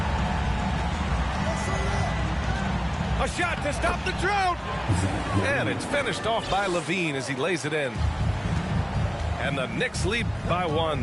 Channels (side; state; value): both; identical; correlation 1.00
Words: A shot to stop the drought. And it's finished off by Levine as he lays it in. And the Knicks lead by 1.